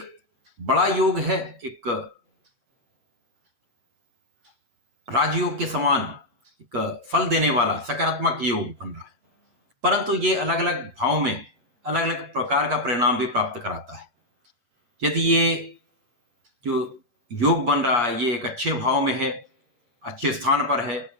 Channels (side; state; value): left; late; 8.4 ms